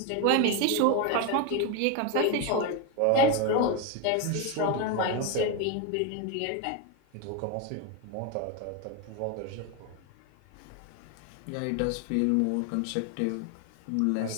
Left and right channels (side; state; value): both; different; correlation 0.02